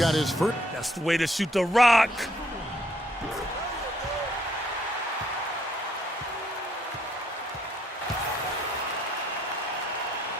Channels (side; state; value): both; normal; correlation 0.69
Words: his first. That's the way to shoot the rock.